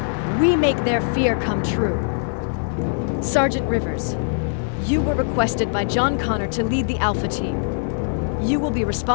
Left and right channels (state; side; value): silent; right; digital silence